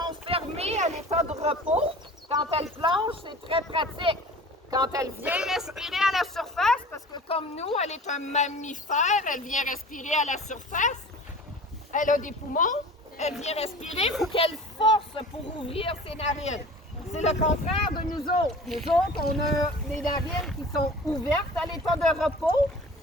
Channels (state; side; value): normal; both; correlation 0.41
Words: fermées à l'état de repos. Quand elles plongent, c'est très pratique. Quand elle vient respirer à la surface, parce que comme nous, elle est un mammifère, elle vient respirer à la surface. Elle a des poumons, elle vient respirer, il faut qu'elle force pour ouvrir ses narines. C'est le contraire de nous autres. Nous autres, on a des narines qui sont ouvertes à l'état de repos.